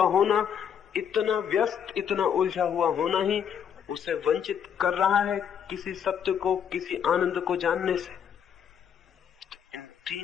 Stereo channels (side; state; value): right; quieter; 8.2 dB